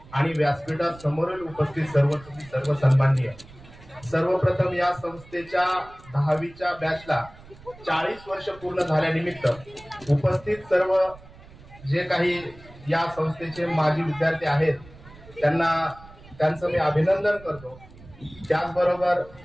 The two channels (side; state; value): right; noise; rumble, 21 dB below the sound